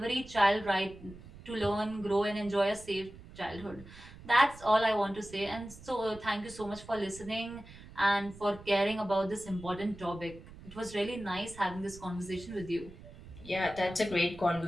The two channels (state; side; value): noise; right; rumble, 18 dB below the sound